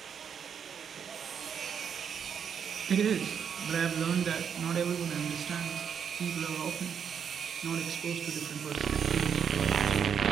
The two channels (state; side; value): quieter; left; 7.4 dB